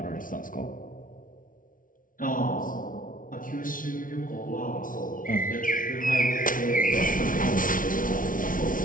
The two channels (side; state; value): right; late; 0.39 ms